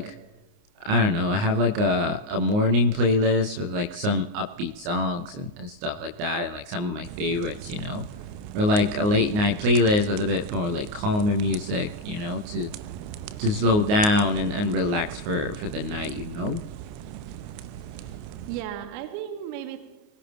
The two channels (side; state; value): left; late; 29 ms